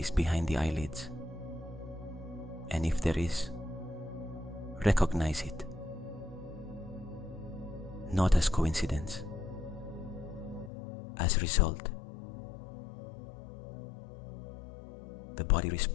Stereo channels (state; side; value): drops out; right; at 10.7 s